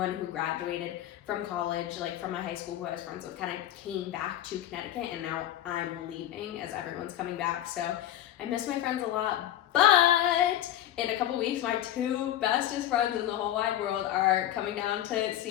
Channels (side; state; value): right; quieter; 12.4 dB